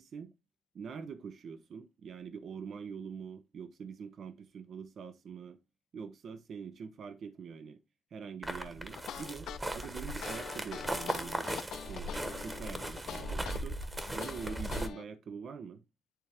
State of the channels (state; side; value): normal; both; correlation 0.82